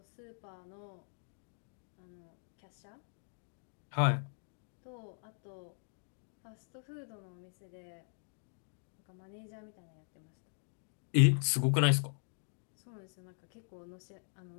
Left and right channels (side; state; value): right; silent; digital silence